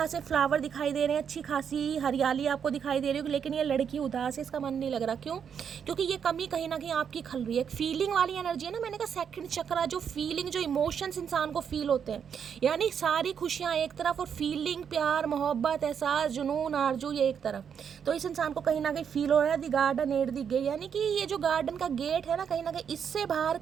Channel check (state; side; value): quieter; left; 7.5 dB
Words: फ्लावर दिखाई दे रहे हैं, अच्छी खासी हरियाली आपको दिखाई दे रही होगी, लेकिन ये लड़की उदास है, इसका मन नहीं लग रहा। क्यों? क्योंकि ये कमी कहीं ना कहीं आपकी खल रही है। फीलिंग वाली एनर्जी है ना, मैंने कहा सेकंड चक्रा, जो फीलिंग, जो इमोशंस इंसान को फील होते हैं, यानी सारी खुशियाँ एक तरफ और फीलिंग, प्यार, मोहब्बत, एहसास, जुनून, आरजू ये एक तरफ। तो इस इंसान को कहीं ना कहीं फील हो रहा है the garden at the gate, यानी कि ये जो गार्डन का गेट है ना, कहीं ना कहीं इससे बाहर